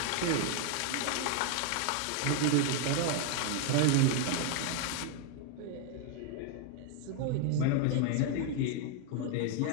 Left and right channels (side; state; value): both; different; correlation 0.01